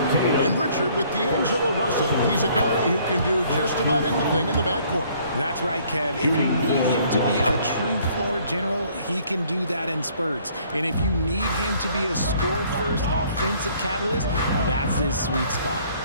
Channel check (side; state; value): both; inverted; correlation -0.61